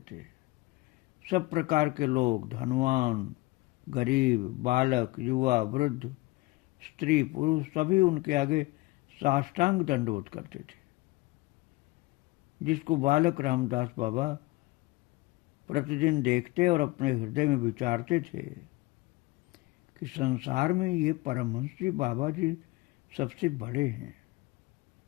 थे। सब प्रकार के लोग, धनवान, गरीब, बालक, युवा, वृद्ध, स्त्री, पुरुष सभी उनके आगे साष्टांग दंडवत करते थे। जिसको बालक रामदास बाबा प्रतिदिन देखते और अपने हृदय में विचारते थे कि संसार में ये परमहंस जी बाबा जी सबसे बड़े हैं।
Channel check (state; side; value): quieter; right; 21.4 dB